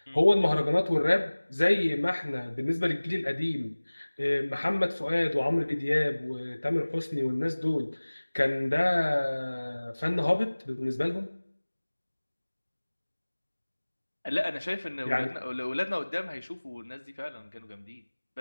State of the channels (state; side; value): inverted; both; correlation -1.00